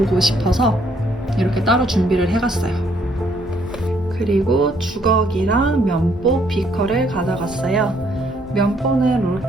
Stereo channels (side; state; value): both; normal; correlation 0.68